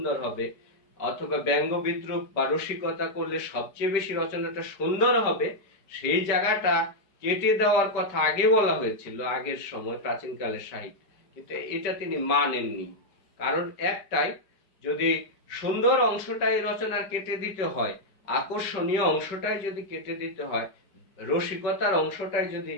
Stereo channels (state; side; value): late; right; 5.1 ms